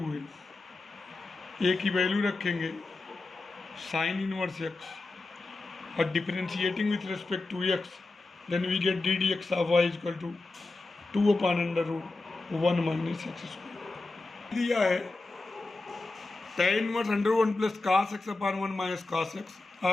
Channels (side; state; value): right; quieter; 3.3 dB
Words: ए की वैल्यू रखेंगे साइन इनवर्स एक्स और differentiating with respect to x, then we get ddx of y equal to 2/√1 minus x square. दिया है tan inverse √1 plus cos x upon 1 minus cos x